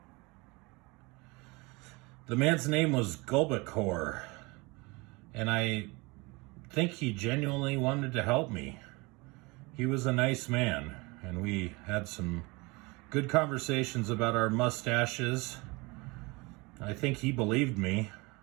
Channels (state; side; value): quieter; left; 25.5 dB